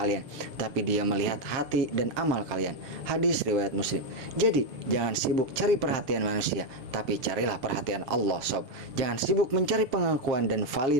tapi Dia melihat hati dan amal kalian. Hadis riwayat Muslim. Jadi jangan sibuk cari perhatian manusia, tapi carilah perhatian Allah sob. Jangan sibuk mencari pengakuan dan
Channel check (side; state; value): left; late; 7.4 ms